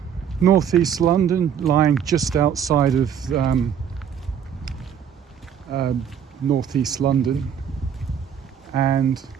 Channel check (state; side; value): quieter; left; 8.3 dB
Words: northeast London, lying just outside of northeast London, and